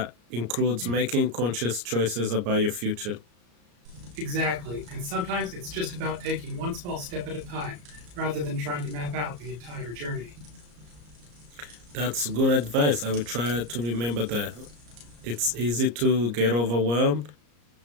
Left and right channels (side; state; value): left; late; 34 ms